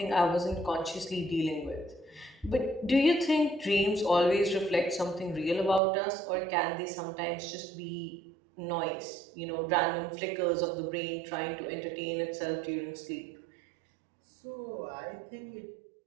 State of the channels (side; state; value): left; drops out; at 5.8 s